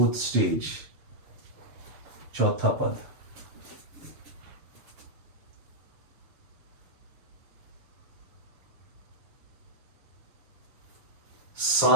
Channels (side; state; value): left; late; 7.1 ms